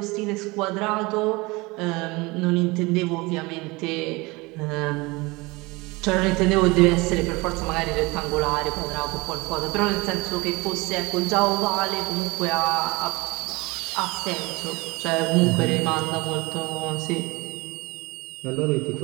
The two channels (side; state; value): left; quieter; 24.0 dB